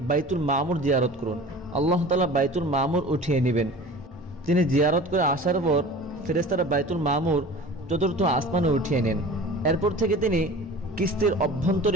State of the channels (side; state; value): both; normal; correlation 0.40